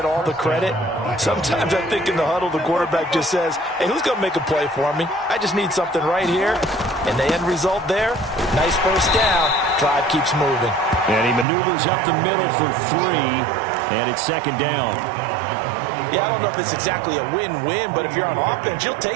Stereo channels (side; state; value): left; drops out; at 11.5 s